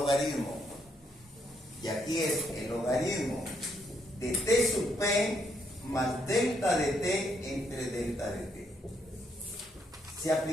Y aquí es el logaritmo de T sub P más delta de T entre delta de T. Si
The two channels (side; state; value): both; normal; correlation 0.75